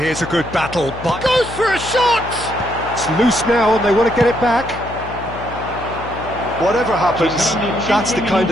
a good battle, but goes for a shot! It's loose now and they want to get it back. Whatever happens, that's the kind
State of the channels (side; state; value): left; noise; hum, 12 dB below the sound